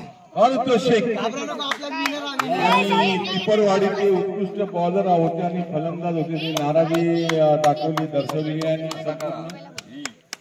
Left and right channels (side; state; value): both; identical; correlation 1.00